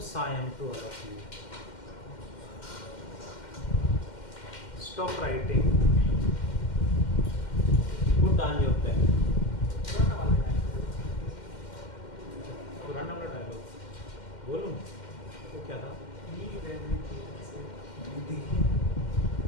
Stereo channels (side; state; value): right; late; 2.1 ms